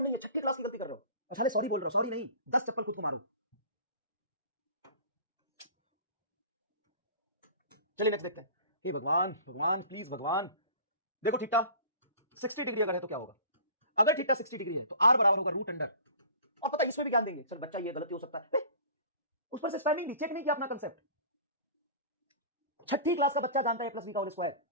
नहीं है, 6ठी क्लास की गलती कर रहे हो और साले सॉरी बोल रहे हो, सॉरी नहीं, 10 चप्पल खुद को मारो। चलिए नेक्स्ट देखते हैं। हे भगवान, भगवान प्लीज भगवान, देखो थीटा 60 डिग्री अगर है तो क्या होगा? अगर थीटा 60 डिग्री है तो r बराबर होगा रूट अंडर, और पता इसमें भी ज्ञान देंगे सर, बच्चा ये गलती हो सकता है, उस पर से स्टैंडिंग भी चेक नहीं किया अपना कंसेप्ट। 6ठी क्लास का बच्चा जानता है a प्लस बी का होल स्क्वायर,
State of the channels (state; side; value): inverted; both; correlation -0.42